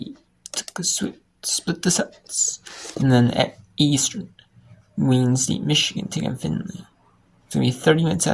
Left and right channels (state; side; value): identical; both; correlation 1.00